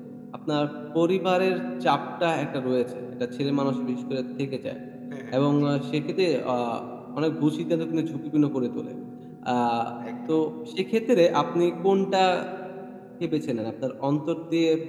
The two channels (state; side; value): identical; both; correlation 1.00